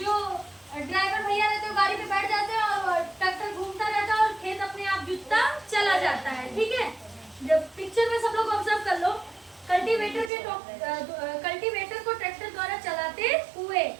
ड्राइवर भैया रहते हैं गाड़ी पे बैठ जाते हैं और ट्रैक्टर घूमता रहता है और खेत अपने आप जुतता चला जाता है। ठीक है, जब पिक्चर में सब लोग ऑब्जर्व कर लो, कल्टीवेटर को ट्रैक्टर द्वारा चलाते हुए।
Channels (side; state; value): left; drops out; at 10.3 s